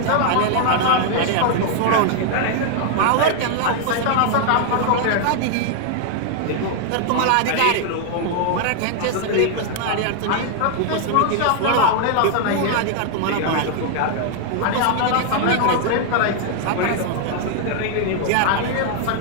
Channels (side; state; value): both; different; correlation 0.00